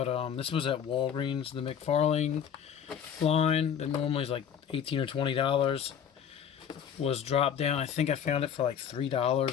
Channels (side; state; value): right; quieter; 8.3 dB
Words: this was at Walgreens, the McFarlane line that normally is like $18 or $20 was dropped down. I think I found it for like